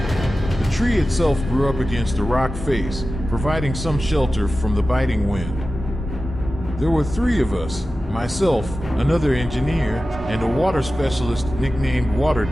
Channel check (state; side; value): normal; both; correlation 0.94